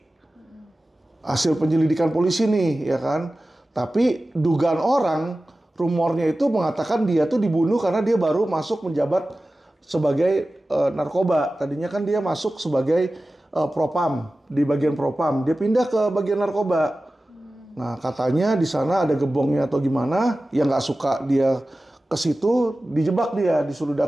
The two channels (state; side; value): normal; both; correlation 0.96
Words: Hasil penyelidikan polisi nih, ya kan. Tapi dugaan orang, rumornya itu mengatakan dia tuh dibunuh karena dia baru masuk menjabat sebagai narkoba. Tadinya kan dia masuk sebagai propam, di bagian propam. Dia pindah ke bagian narkoba. Nah, katanya di sana ada gebongnya atau gimana, yang nggak suka dia ke situ, dijebak dia, disuruh